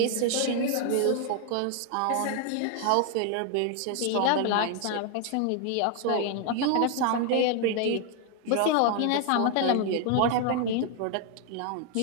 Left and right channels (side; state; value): both; different; correlation 0.00